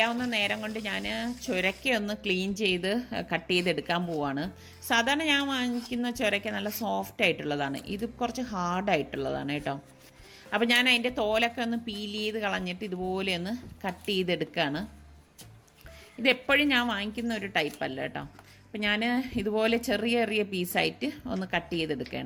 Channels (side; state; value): both; identical; correlation 1.00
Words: നേരം കൊണ്ട് ഞാൻ ചുരക്ക ഒന്ന് ക്ലീൻ ചെയ്ത് കട്ട് ചെയ്തെടുക്കാൻ പോവാണ്. സാധാരണ ഞാൻ വാങ്ങിക്കുന്ന ചുരക്ക നല്ല സോഫ്റ്റ് ആയിട്ടുള്ളതാണ്. ഇത് കുറച്ച് ഹാർഡായിട്ടുള്ളതാണ് കേട്ടോ. അപ്പോൾ ഞാൻ അതിൻ്റെ തോലൊക്കെ ഒന്ന് പീൽ ചെയ്ത് കളഞ്ഞിട്ട് ഇതുപോലെ ഒന്ന് കട്ട് ചെയ്തെടുക്കുകയാണ്. ഇതെപ്പോഴും ഞാൻ വാങ്ങിക്കുന്ന ഒരു ടൈപ്പല്ല കേട്ടോ. അപ്പോൾ ഞാൻ ഇതുപോലെ ചെറിയ പീസായിട്ട് ഒന്ന് കട്ട്